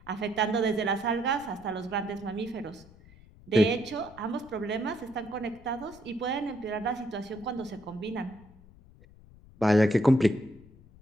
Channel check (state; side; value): noise; left; rumble, 23 dB below the sound